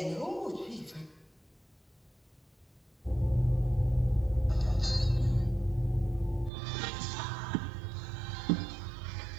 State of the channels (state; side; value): drops out; left; at 6.5 s